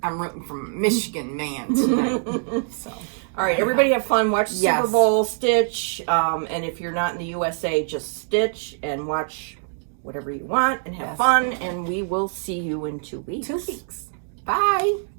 I'm rooting for Michigan man tonight. So. All right, everybody have fun. Watch Yes. Super Bowl, stitch, and if you're not in the USA, just stitch and watch whatever you want and have Yes. fun. And we will see you in 2 weeks. 2 weeks. Bye.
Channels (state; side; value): silent; left; digital silence